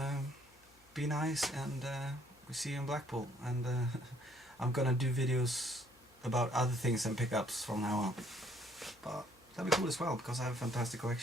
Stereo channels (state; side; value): noise; left; hum, 29 dB below the sound